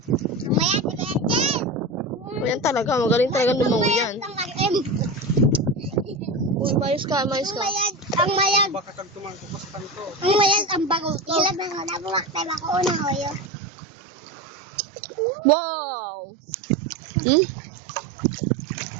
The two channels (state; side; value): drops out; left; at 13.5 s